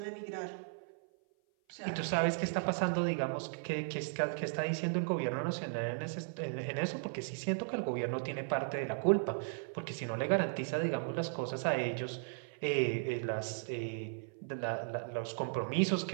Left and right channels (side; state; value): left; silent; 54 dB below the other